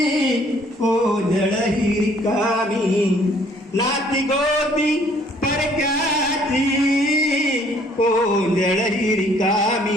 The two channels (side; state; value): both; normal; correlation 0.61